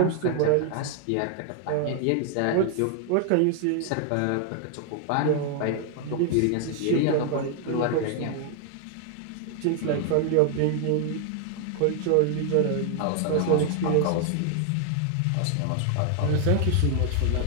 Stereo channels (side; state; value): both; different; correlation 0.00